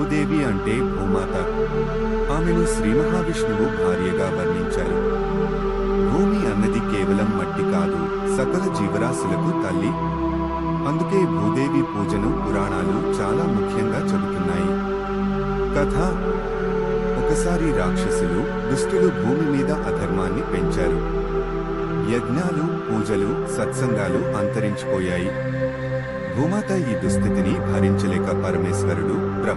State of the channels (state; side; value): identical; both; correlation 1.00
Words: అంటే భూమాత. ఆమెను శ్రీ మహావిష్ణువు భార్యగా వర్ణించారు. భూమి అన్నది కేవలం మట్టి కాదు, సకల జీవరాశులకు తల్లి. అందుకే భూదేవి పూజను పురాణాలు చాలా ముఖ్యంగా చెబుతున్నాయి. కథ: ఒకసారి రాక్షసులు, దుష్టులు భూమి మీద అధర్మాన్ని పెంచారు. యజ్ఞాలు, పూజలు, సత్సంగాలు అంతరించిపోయాయి. భూమాత ఈ దుస్థితిని భరించలేక పరమేశ్వరుడు,